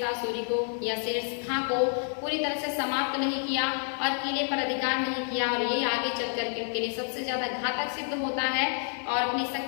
सूरी को या शेर खां को पूरी तरह से समाप्त नहीं किया और किले पर अधिकार नहीं किया, और ये आगे चल करके उनके लिए सबसे ज्यादा घातक सिद्ध होता है। और अपनी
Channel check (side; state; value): right; silent; 57 dB below the other